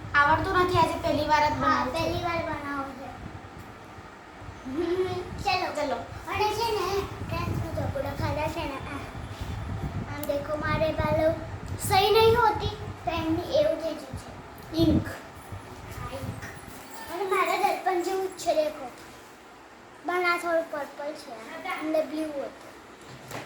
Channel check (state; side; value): identical; both; correlation 1.00